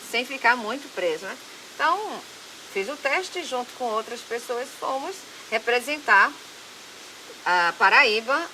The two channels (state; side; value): identical; both; correlation 1.00